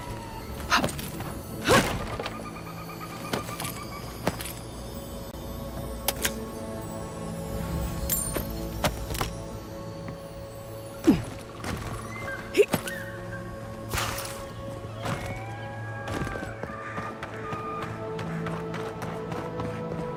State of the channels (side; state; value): both; identical; correlation 1.00